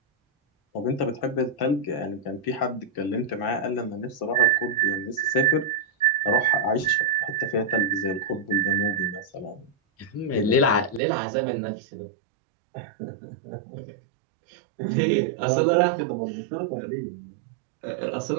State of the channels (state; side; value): drops out; left; at 11.0 s